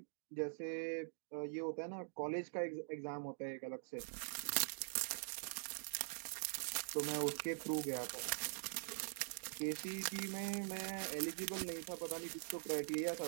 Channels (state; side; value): silent; left; digital silence